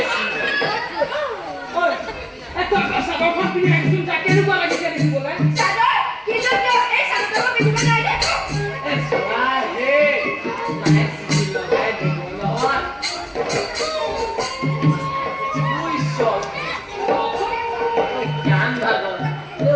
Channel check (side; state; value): both; identical; correlation 1.00